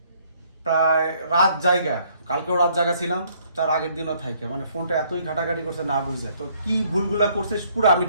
প্রায় রাত জায়গা, কালকেও রাত জায়গা ছিলাম, তার আগের দিনও থাকে, মানে ফোনটা এতই ঘাটাঘাটি করছে না বুঝে। তো কি ভুলগুলা করছে পুরো আমি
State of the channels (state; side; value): inverted; both; correlation -0.65